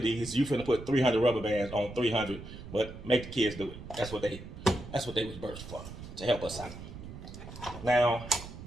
these, you finna put 300 rubber bands on 300. But make the kids do it. That's what they was birthed for, to help us out. Now,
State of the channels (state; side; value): noise; right; rumble, 12 dB below the sound